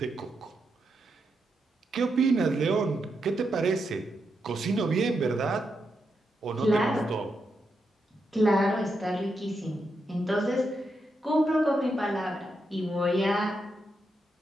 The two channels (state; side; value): normal; both; correlation 0.83